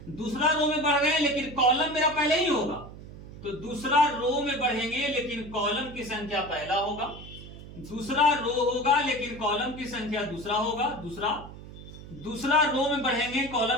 दूसरा रो में बढ़ रहे हैं, लेकिन कॉलम मेरा पहले ही होगा, तो दूसरा रो में बढ़ेंगे लेकिन कॉलम की संख्या पहला होगा, दूसरा रो होगा लेकिन कॉलम की संख्या दूसरा होगा, दूसरा रो में बढ़ेंगे,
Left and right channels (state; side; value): noise; right; hum, 15 dB below the sound